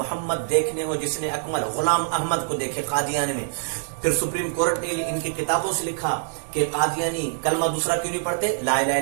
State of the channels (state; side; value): silent; left; digital silence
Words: دیکھنے ہو جس نے اکمل، غلام احمد کو دیکھے قادیان میں. پھر سپریم کورٹ نے ان کی کتابوں سے لکھا کہ قادیانی کلمہ دوسرا کیوں نہیں پڑھتے، لا الہ الا